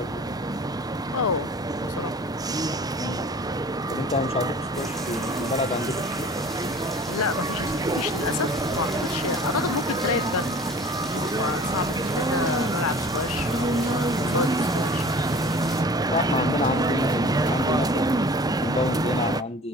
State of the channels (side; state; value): both; normal; correlation 0.44